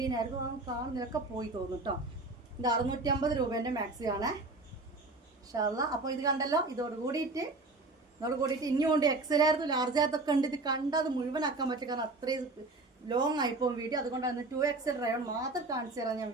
ആയിരുന്നു, കാണുന്നതൊക്കെ പോയി തോന്നും കേട്ടോ. ഇത് 650 രൂപേന്റെ മാക്സിയാണ് ഇൻഷാല്ലാ. അപ്പോൾ ഇത് കണ്ടല്ലോ, ഇതോട് കൂടിയിട്ട് ഇനിയും കൊണ്ട് XL ആയിരുന്നു, ലാർജ് ആയിരത്തൊക്കെ ഉണ്ട്. ഇത് കണ്ടാൽ അത് മുഴുവനാക്കാൻ പറ്റും, കാരണം അത്രയും ലോങ് ആയിപ്പോവും വീഡിയോ. അതുകൊണ്ടാണ് 2XL റയോൺ മാത്രം കാണിച്ചു തരാൻ ഞാൻ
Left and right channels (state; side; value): quieter; left; 3.2 dB